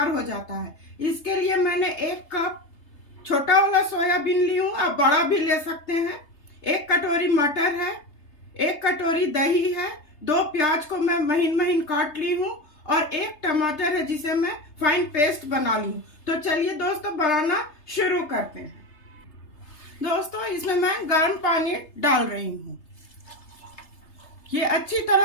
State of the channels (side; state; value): right; late; 3.3 ms